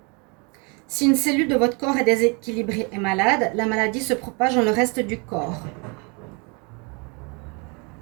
Si une cellule de votre corps est déséquilibrée et malade, la maladie se propage dans le reste du corps.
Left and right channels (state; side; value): quieter; left; 32.1 dB